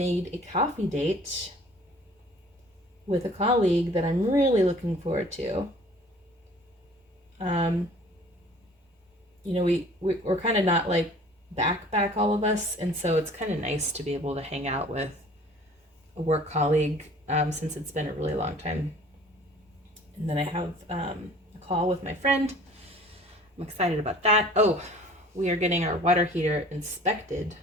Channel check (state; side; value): normal; both; correlation 0.50